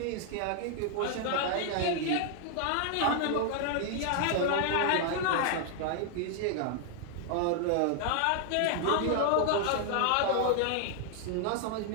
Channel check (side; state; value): both; different; correlation 0.00